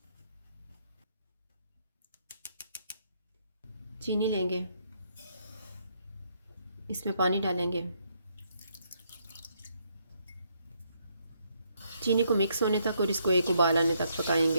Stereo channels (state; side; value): inverted; both; correlation -0.73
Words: चीनी लेंगे, इसमें पानी डालेंगे, चीनी को मिक्स होने तक और इसको एक उबाल आने तक